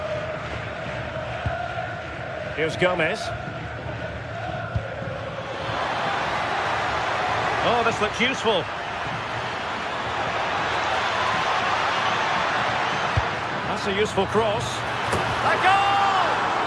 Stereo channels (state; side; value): identical; both; correlation 1.00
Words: Here's Gomez. Oh, this looks useful. That's a useful cross. A goal!